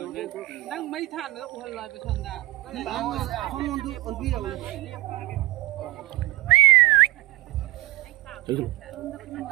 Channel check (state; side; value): quieter; left; 19.1 dB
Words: Nang mấy than nữa udah lại besok dah. không muốn đi còn đi đâu